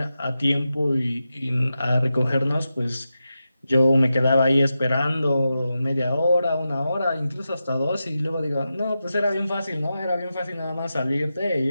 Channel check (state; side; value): inverted; both; correlation -0.90